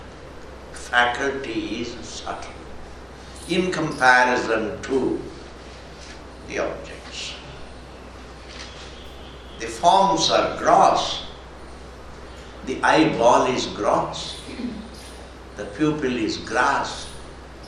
faculty is subtle in comparison to the objects. The forms are gross. The eyeball is gross. The pupil is gross.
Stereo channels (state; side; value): identical; both; correlation 1.00